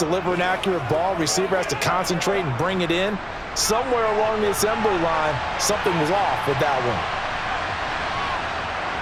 an accurate ball. Receiver has to concentrate and bring it in. Somewhere along the assembly line, something was off with that one.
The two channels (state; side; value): identical; both; correlation 1.00